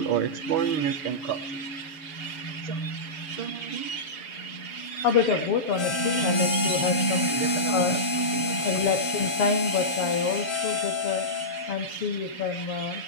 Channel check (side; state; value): right; late; 6.9 ms